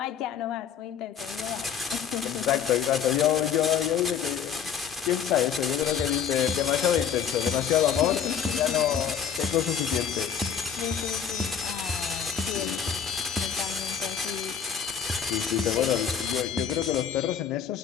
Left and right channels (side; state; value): right; quieter; 7.7 dB